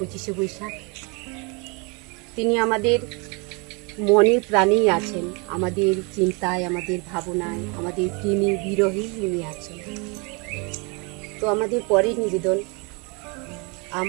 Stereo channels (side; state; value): left; quieter; 30.8 dB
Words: বৈশাখ। তিনি আমাদের মনে প্রাণেই আছেন, আমাদের চিন্তায়, আমাদের ভাবনায়, আমাদের প্রেমী বিরহেই উনি আছেন। তো আমাদের পরের নিবেদন,